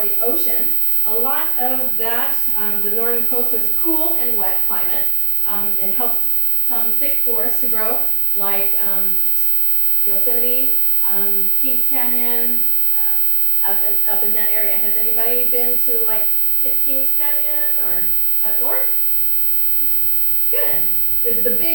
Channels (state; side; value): quieter; left; 10.2 dB